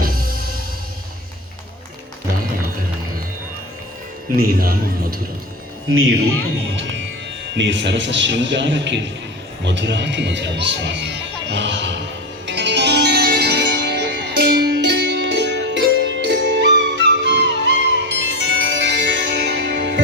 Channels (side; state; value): both; normal; correlation 0.21